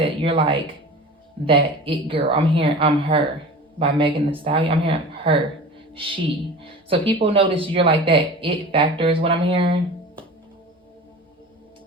you're like that it girl. I'm hearing I'm her by Megan Thee Stallion. I'm hearing her, she. So people notice you're like that it factor is what I'm hearing.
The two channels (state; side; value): normal; both; correlation 0.36